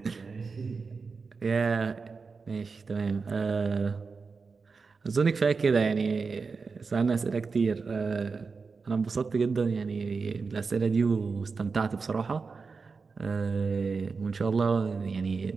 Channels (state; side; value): quieter; left; 4.7 dB